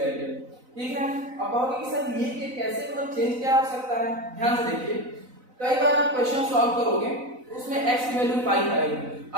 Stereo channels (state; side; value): late; left; 4.0 ms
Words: ठीक है. अब कहोगे कि सर ये कैसे, मतलब चेंज क्या हो सकता है? ध्यान से देखिए. कई बार आप क्वेश्चन सॉल्व करोगे उसमें x की वैल्यू 5 आएगी,